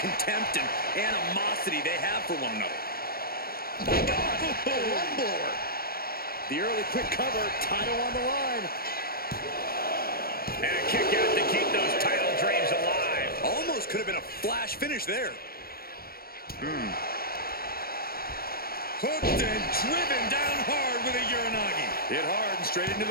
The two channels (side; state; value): right; late; 0.44 ms